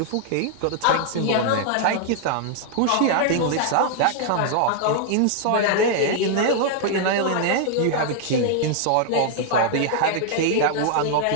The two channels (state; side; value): different; both; correlation 0.00